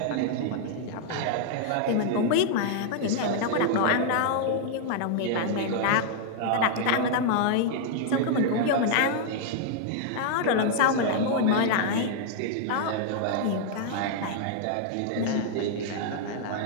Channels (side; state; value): both; different; correlation -0.01